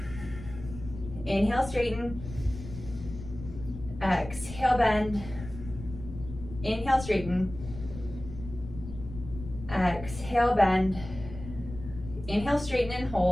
Inhale, straighten, exhale, bend, inhale, straighten, exhale, bend, inhale, straighten and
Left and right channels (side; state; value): left; noise; rumble, 12 dB below the sound